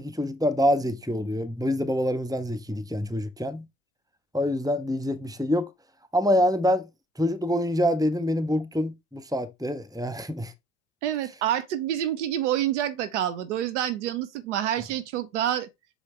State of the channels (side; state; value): both; normal; correlation 0.57